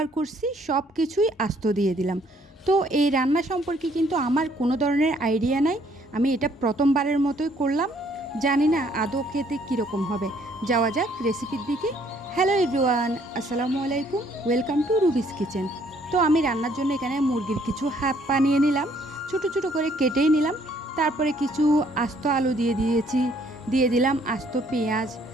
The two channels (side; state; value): both; normal; correlation 0.64